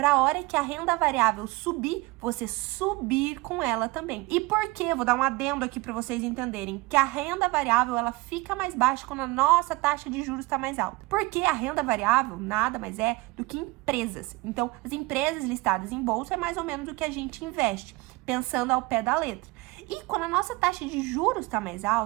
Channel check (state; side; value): quieter; left; 22.7 dB